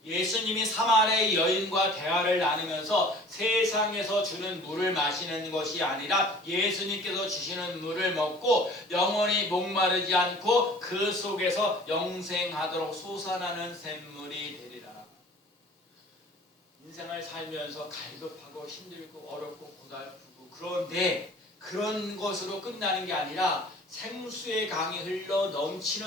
예수님이 사마리아 여인과 대화를 나누면서 세상에서 주는 물을 마시는 것이 아니라 예수님께서 주시는 물을 먹고 영원히 목마르지 않고 그 속에서 영생하도록 솟아나는 샘물이 되리라. 인생을 살면서 갈급하고 힘들고 어렵고 고달프고, 그런데 그런 것으로 끝나는 게 아니라 생수의 강이 흘러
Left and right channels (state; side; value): normal; both; correlation 0.47